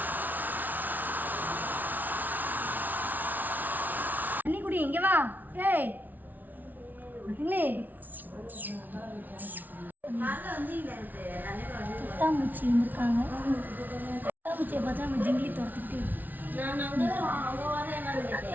தண்ணி குடி, இங்கே வா. ஏய் இல்லை பட்டாம்பூச்சி இருந்திருக்காங்க. பட்டாம்பூச்சியை பார்த்தா நம்ம ஜிங்கிலி துரத்துக்கிட்டே இருக்கு.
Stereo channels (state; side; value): late; left; 0.082 ms